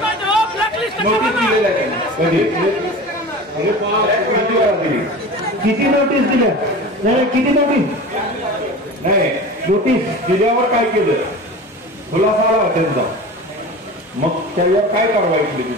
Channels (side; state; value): both; normal; correlation 0.34